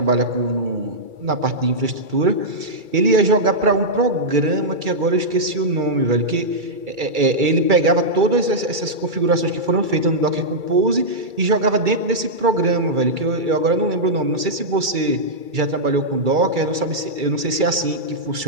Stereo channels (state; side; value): late; left; 2.3 ms